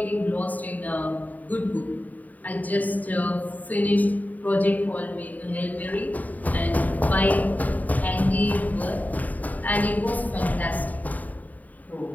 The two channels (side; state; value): right; late; 0.077 ms